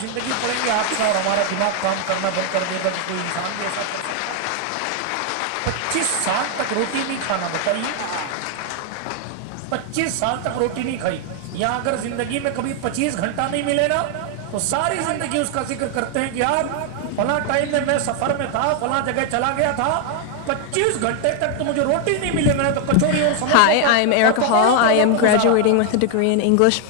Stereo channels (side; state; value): both; different; correlation 0.00